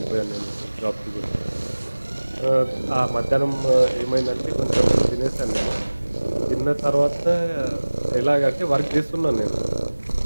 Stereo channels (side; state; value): both; inverted; correlation -1.00